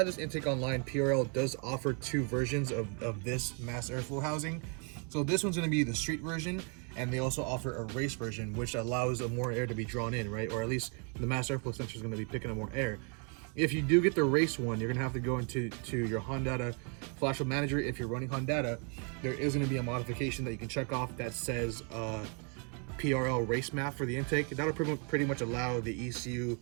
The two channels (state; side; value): quieter; left; 38.2 dB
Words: this intake online, PRL does offer 2 versions of this mass airflow housing. So this one's gonna be the street version, and they also offer a race version, which allows more air to be drawn in, right? Or at least the mass airflow sensor is gonna be picking up more air. If you do get the race one, you're gonna have to go into your Honda Flash Manager. If you're running Honda, there is gonna be a modification that you can check off that says PRL race MAF for the intake. That'll pretty much allow the ECU